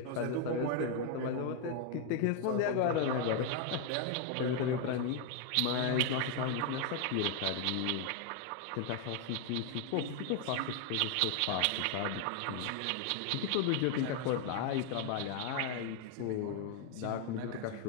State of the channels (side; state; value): both; different; correlation 0.00